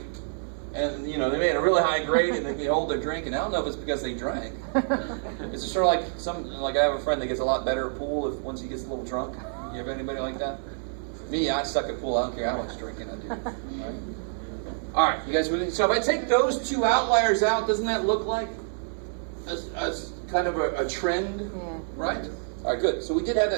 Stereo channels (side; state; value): left; silent; digital silence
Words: And, you know, they made a really high grade and they can hold their drink. And I don't know if it's because they drank. It's just sort of like I have a friend that gets a lot better at pool once he gets a little drunk. You have anybody like that? Me, I suck at pool. I don't care how much drinking I do. Right? All right, you guys with me? So if I take those two outliers out, doesn't that look like a kind of a trend? Yeah. Right? All right, good. So we did have